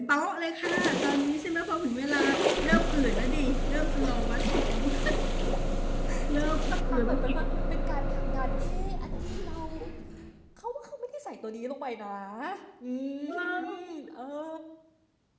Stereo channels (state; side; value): identical; both; correlation 1.00